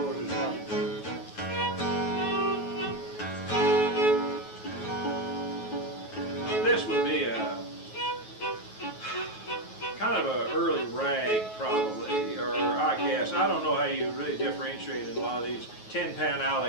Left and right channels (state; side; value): late; right; 9.3 ms